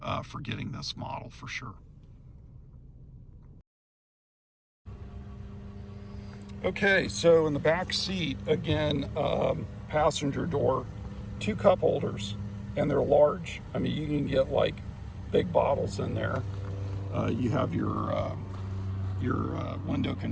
for getting this model for sure. Okay, so in the back seat, again, passenger door, 2 cup holders, and they're large. I mean, you can get like big bottles in there. You have your window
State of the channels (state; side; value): identical; both; correlation 1.00